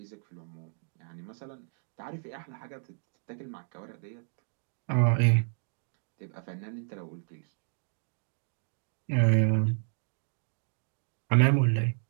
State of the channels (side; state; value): left; silent; 57 dB below the other